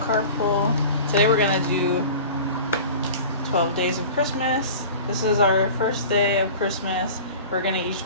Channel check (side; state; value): both; inverted; correlation -0.39